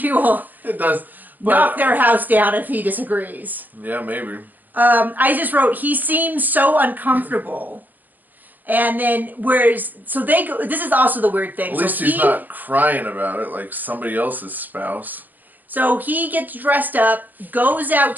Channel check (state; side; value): late; left; 0.087 ms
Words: will knock their house down if he disagrees. Yeah, maybe. I just wrote, he seems so uncomfortable. And then, so they go, this is also the weird thing. At least he's not crying about it like somebody else's spouse. So he gets dressed up, goes out